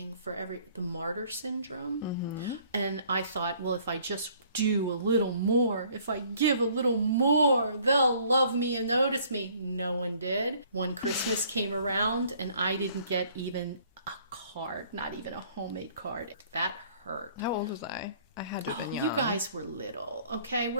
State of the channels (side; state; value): both; inverted; correlation -0.58